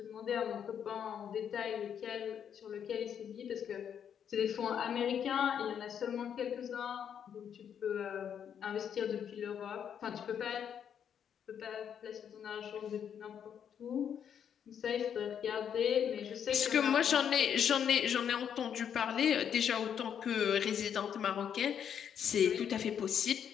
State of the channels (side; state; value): right; quieter; 8.4 dB